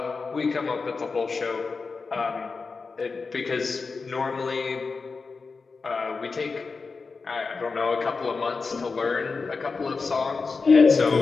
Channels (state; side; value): quieter; right; 4.5 dB